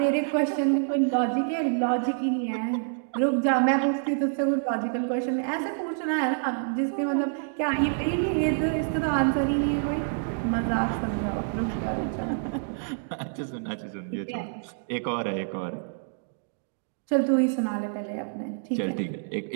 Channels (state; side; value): silent; left; digital silence